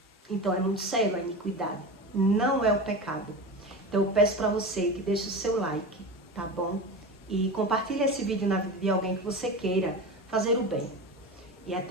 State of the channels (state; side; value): normal; both; correlation 0.26